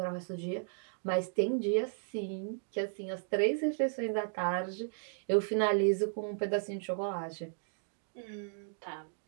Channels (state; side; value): silent; left; digital silence